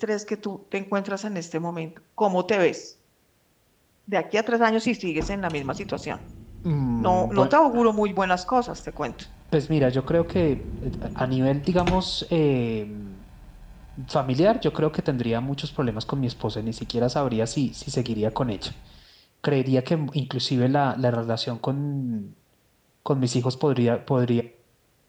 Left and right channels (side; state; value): both; identical; correlation 1.00